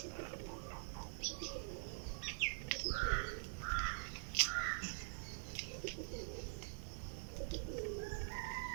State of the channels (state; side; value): silent; left; digital silence